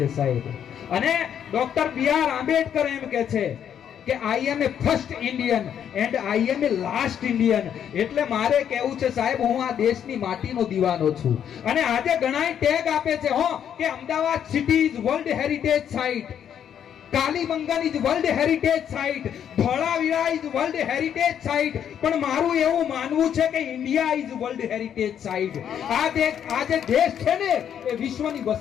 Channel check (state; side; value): quieter; right; 9.0 dB